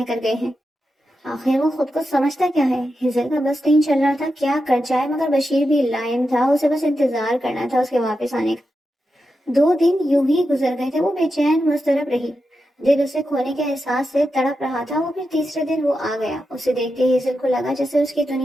کر گئے ہیں۔ آخر وہ خود کو سمجھتا کیا ہے؟ ہیزل کا بس نہیں چل رہا تھا کیا کر جائے، مگر بشیر بھی لائن تھا، اسے بس انتظار کرنا تھا اس کے واپس آنے کا۔ 2 دن یوں ہی گزر گئے تھے، وہ بے چین مضطرب رہی، دل اسے کھونے کے احساس سے تڑپ رہا تھا۔ وہ پھر تیسرے دن وہ آ گیا، اسے دیکھتے ہیزل کو لگا جیسے اس کی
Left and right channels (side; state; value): both; normal; correlation 0.88